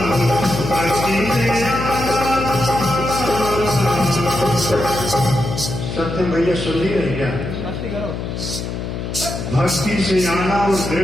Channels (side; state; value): left; noise; hum, 5 dB below the sound